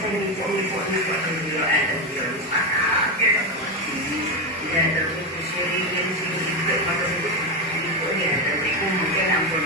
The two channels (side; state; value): both; normal; correlation 0.11